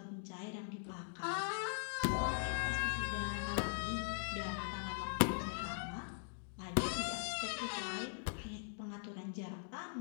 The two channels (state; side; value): silent; right; digital silence